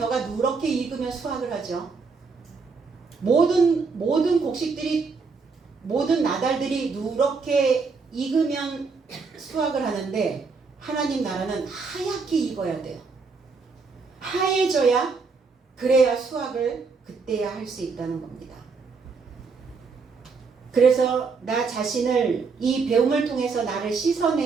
누렇게 익으면 수확을 하죠. 모든 곡식들이, 모든 나달들이 누렇게 익으면 수확을 하는데 하나님 나라는 하얗게 익어야 돼요. 하얘져야, 그래야 수확을 그때야 할 수 있다는 겁니다. 그래서 나 자신을 이 배움을 통해서 나를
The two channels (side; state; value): left; quieter; 4.7 dB